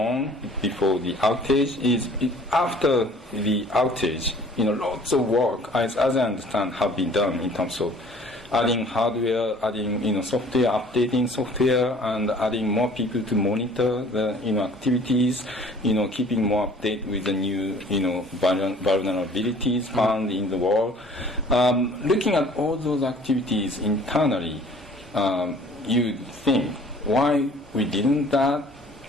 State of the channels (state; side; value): normal; both; correlation 0.52